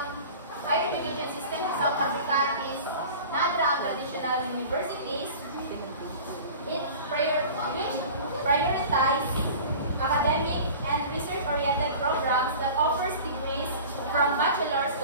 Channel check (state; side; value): inverted; both; correlation -0.39